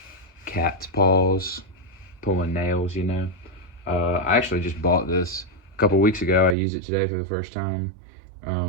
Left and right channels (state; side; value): drops out; left; at 6.6 s